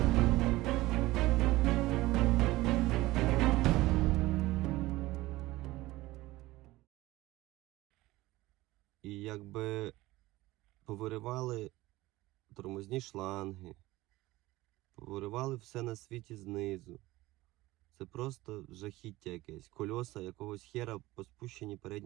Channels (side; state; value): left; quieter; 18.4 dB